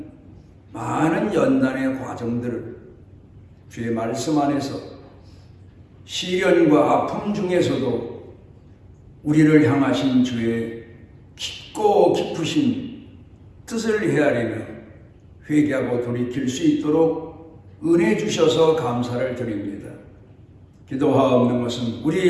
많은 연단의 과정들을 주의 말씀 안에서 시련과 아픔 중에서도 우리를 향하신 주의 깊고 깊으신 뜻을 헤아리며 회개하고 돌이킬 수 있도록 은혜 주셔서 감사를 드립니다. 기도하옵는 것은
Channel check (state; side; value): identical; both; correlation 1.00